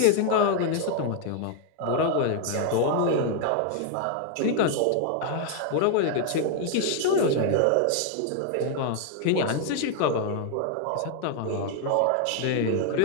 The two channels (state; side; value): different; both; correlation 0.00